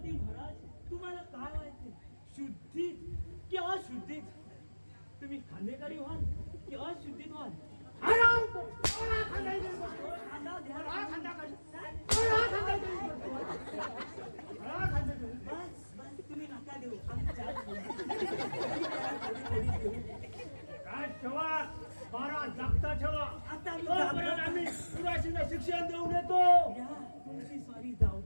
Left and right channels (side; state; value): both; inverted; correlation -1.00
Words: महाराज, तुम्हाला काय व्हायचे? शुद्धीत की अशुद्धीत? तुम्ही खांदेकरी व्हाल की अशुद्धीत व्हाल? बस तुम्ही नका देऊ. काय ठेवा, 12 जागता ठेवा. आता आम्ही पुराशीला शिक्षण देऊन येतो. तुमची सॉरी जाऊ